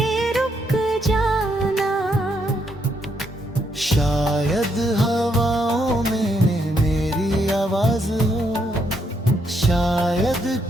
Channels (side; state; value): both; normal; correlation 0.76